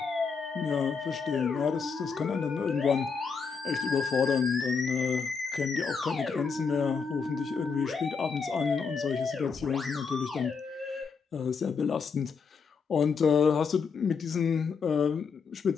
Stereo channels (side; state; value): right; quieter; 5.5 dB